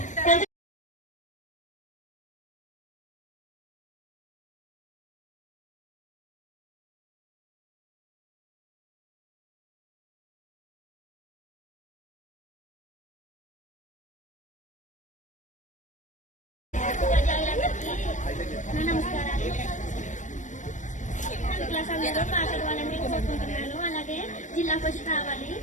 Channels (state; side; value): late; right; 0.36 ms